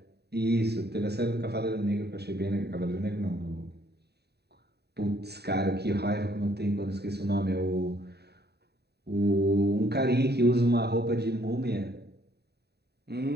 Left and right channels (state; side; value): late; left; 0.48 ms